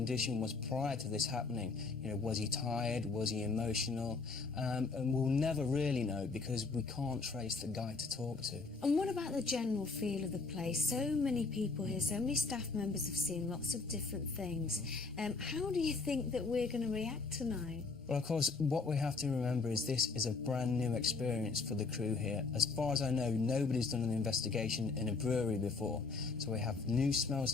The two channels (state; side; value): quieter; right; 4.2 dB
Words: was prior to this happening. You know, was he tired? Was he emotional? And we'll never really know because we can't trace the guy to talk to. And what about the general feel of the place? So many people here, so many staff members have seen lots of different things. How do you think that we're going to react tonight? Well, of course, what we have to remember is this is a brand new experience for the crew here. As far as I know, nobody's done an investigation in a brewery before. So we have new smells